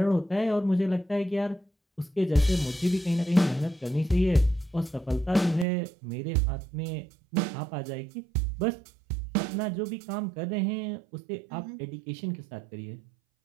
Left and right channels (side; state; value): left; drops out; at 5.7 s